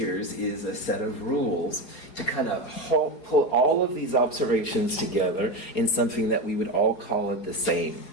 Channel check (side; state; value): right; late; 4.8 ms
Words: is a set of rules to kind of pull all of these observations together in something that we would all call it the same,